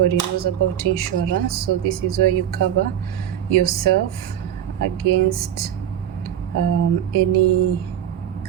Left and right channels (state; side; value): quieter; left; 10.4 dB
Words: knows about insurance. So this is where you cover yourself against any